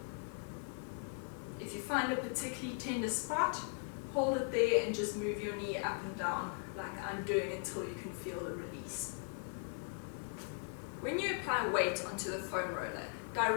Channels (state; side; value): quieter; right; 36.7 dB